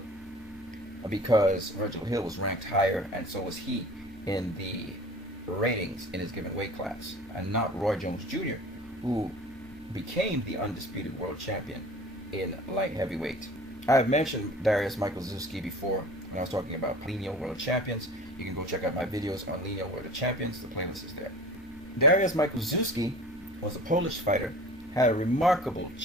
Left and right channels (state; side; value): normal; both; correlation 0.42